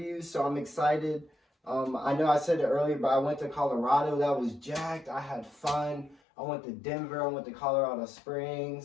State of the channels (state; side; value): drops out; right; at 6.2 s